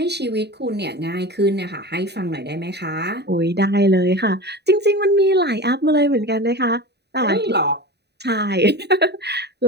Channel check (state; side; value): late; left; 0.48 ms